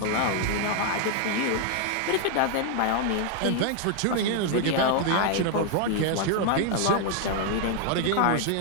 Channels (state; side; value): different; both; correlation 0.00